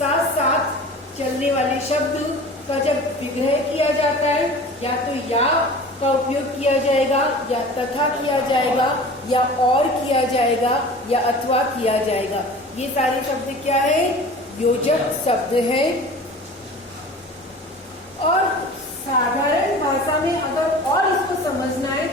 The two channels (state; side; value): normal; both; correlation 0.40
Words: साथ चलने वाले शब्द का जब विग्रह किया जाता है, या तो या का उपयोग किया जाएगा, या तथा किया जाएगा, या और किया जाएगा, या अथवा किया जाएगा। ये सारे शब्द क्या है? योजक शब्द है। और साधारण भाषा में अगर और इसको समझना है